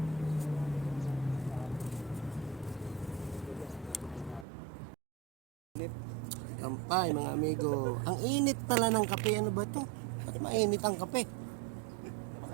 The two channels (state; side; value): drops out; left; at 4.5 s